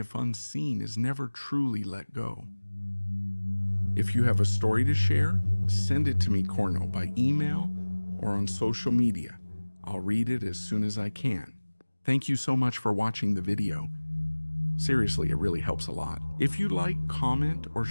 unseen, is never truly let go. If you have a story to share, send it to me, Cornell, by email or on social media. I'll read it as soon as I can. Thank you so much for watching the video. Seriously, it really helps a lot. If you like, comment or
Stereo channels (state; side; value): inverted; both; correlation -1.00